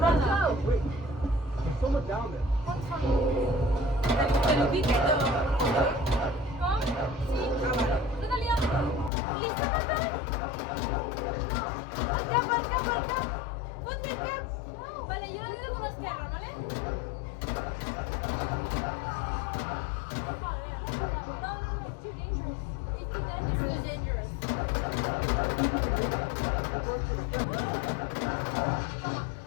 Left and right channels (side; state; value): right; drops out; at 9.1 s